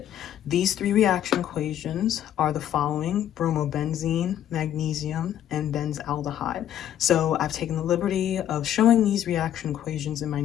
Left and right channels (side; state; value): right; quieter; 11.0 dB